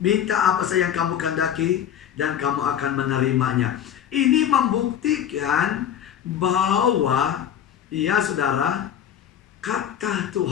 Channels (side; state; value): right; quieter; 9.7 dB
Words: minta apa saja yang kamu kehendaki dan kamu akan menerimanya. Ini membuktikan bahwa ya saudara, kata